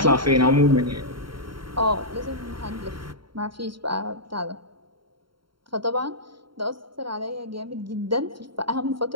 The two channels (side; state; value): left; late; 0.73 ms